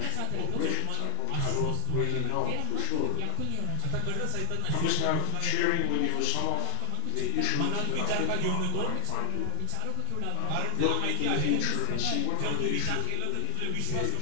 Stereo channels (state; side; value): different; both; correlation 0.00